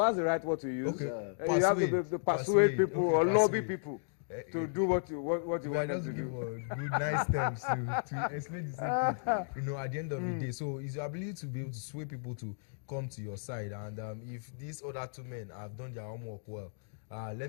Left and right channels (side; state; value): right; silent; digital silence